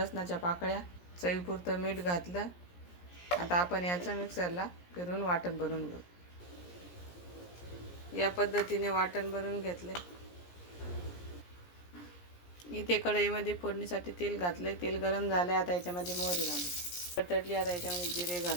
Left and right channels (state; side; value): late; right; 17 ms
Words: पाकळ्या, चवीपुरतं मीठ घातलं। आता आपण याचं मिक्सरला फिरून वाटण बनवून घेऊ। या पद्धतीने वाटण बनवून घेतले। इथे कढईमध्ये फोडणीसाठी तेल घातले। तेल गरम झाले, आता याच्यामध्ये मोहरी घालू। तडली, आता याच्यामध्ये जिरे